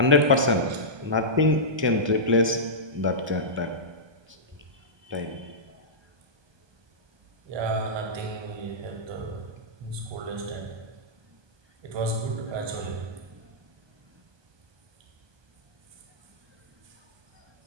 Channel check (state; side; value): late; left; 1.2 ms